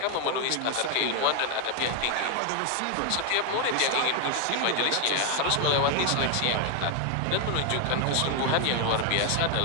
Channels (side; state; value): both; different; correlation 0.01